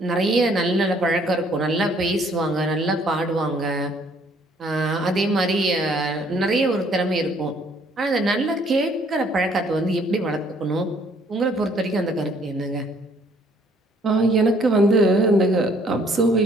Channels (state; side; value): normal; both; correlation 0.63